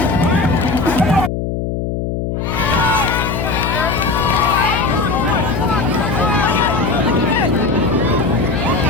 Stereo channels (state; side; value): noise; left; hum, 3 dB below the sound